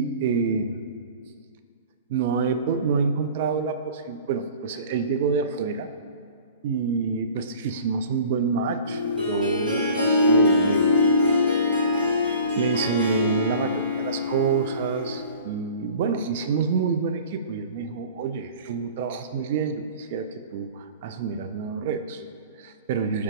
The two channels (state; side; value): inverted; both; correlation -0.45